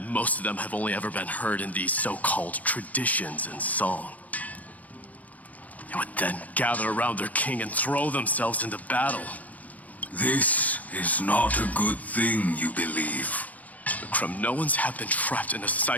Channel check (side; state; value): right; late; 0.075 ms